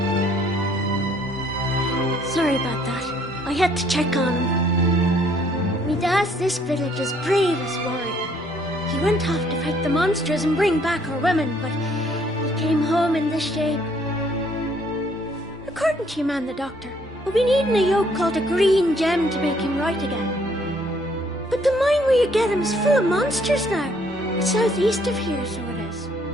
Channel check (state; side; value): normal; both; correlation 0.64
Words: Sorry about that. I had to check on him. Me dad's this village's bravest warrior. He went off to fight the monsters and bring back our women, but he came home in this shape. According to your man, the doctor, we'll be needing a yoke called a green gem to make him right again. But the mine where you get him is full of monsters now. It's southeast of here, so it is.